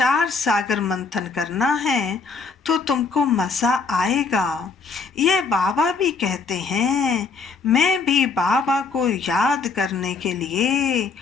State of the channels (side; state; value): right; quieter; 4.6 dB